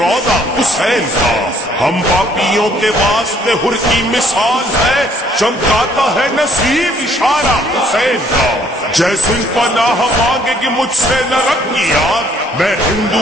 حسین کا ہم پاپیوں کے واسطے ہر کی مثال ہے چمکاتا ہے نصیب اشارہ حسین کا جیسے پناہ مانگے گی مجھ سے نہ رکھ یاد میں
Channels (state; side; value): normal; both; correlation 0.63